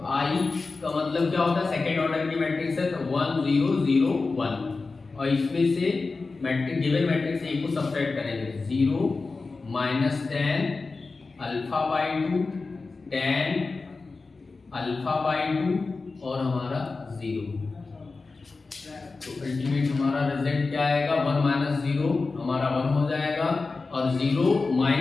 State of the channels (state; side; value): quieter; right; 4.0 dB